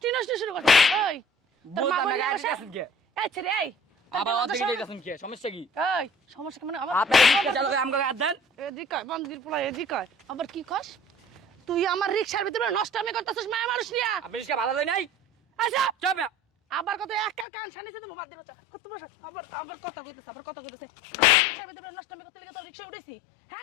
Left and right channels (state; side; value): drops out; right; at 17.4 s